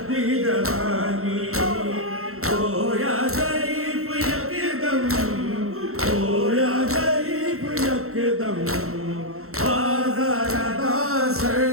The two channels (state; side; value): late; left; 0.63 ms